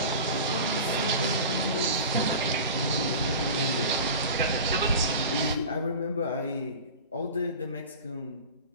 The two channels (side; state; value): both; inverted; correlation -0.33